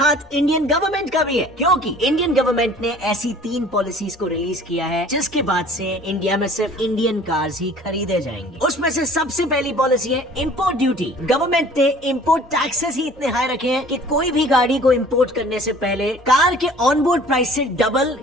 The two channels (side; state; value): both; normal; correlation 0.49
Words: इंडियन गवर्नमेंट का भी है, क्योंकि इंडियन गवर्नमेंट ने ऐसी 3 पॉलिसीज को रिलीज किया है जिसके बाद से इंडिया में सिर्फ इंडियन कार्स ही खरीदे जाएंगे। उसमें से सबसे पहली पॉलिसी है इंपोर्ट ड्यूटी। गवर्नमेंट ने इंपोर्ट टैक्सेस ही इतने हाई रखे हैं कि कोई भी गाड़ी को इंपोर्ट करने से पहले कार के ऑनबोर्ड प्राइस से डबल